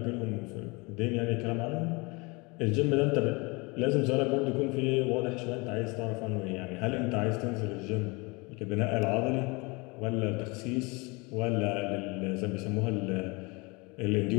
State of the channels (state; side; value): quieter; right; 27.3 dB